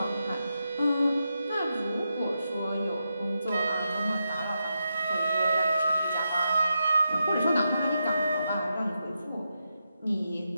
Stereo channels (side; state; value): both; inverted; correlation -0.86